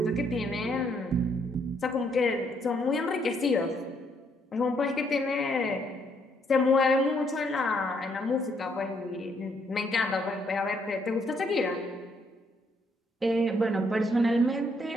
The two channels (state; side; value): normal; both; correlation 0.71